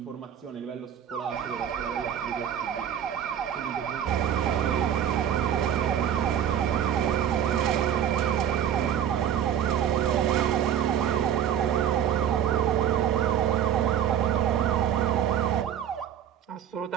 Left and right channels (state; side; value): quieter; left; 9.6 dB